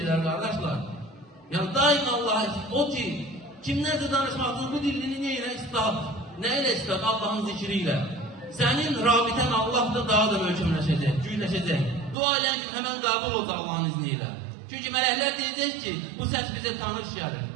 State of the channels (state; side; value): drops out; left; at 12.2 s